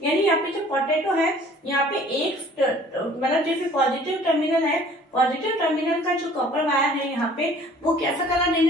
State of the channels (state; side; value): normal; both; correlation 0.53